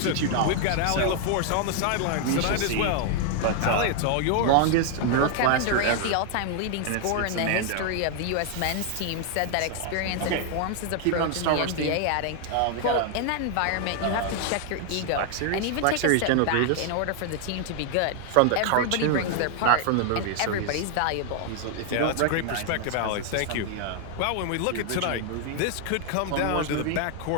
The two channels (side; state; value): both; different; correlation 0.00